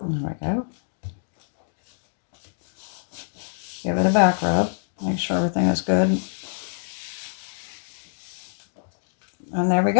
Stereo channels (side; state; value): right; silent; digital silence